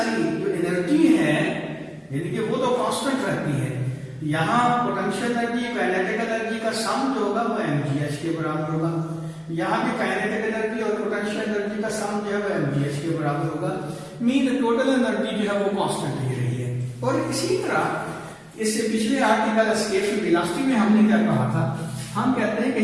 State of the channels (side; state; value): both; identical; correlation 1.00